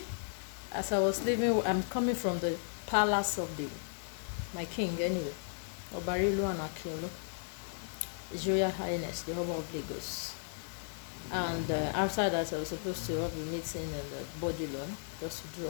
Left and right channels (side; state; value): right; silent; digital silence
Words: As I was leaving, I'm coming from the palace of my king anyway, Obarilu and Akiolu, His Royal Highness, the Oba of Lagos. And after that, I was supposed to have a meeting in the body loan just to